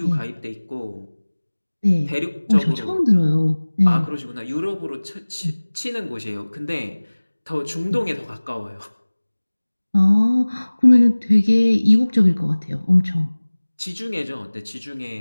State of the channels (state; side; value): inverted; both; correlation -1.00